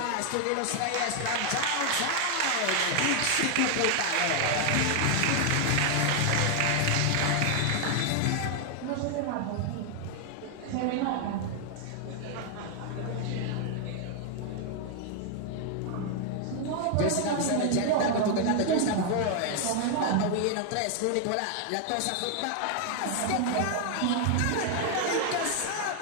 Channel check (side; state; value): both; different; correlation 0.00